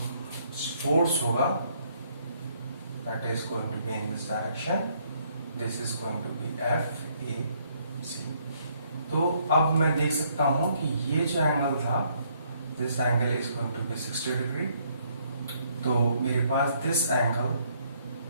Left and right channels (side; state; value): both; inverted; correlation -0.68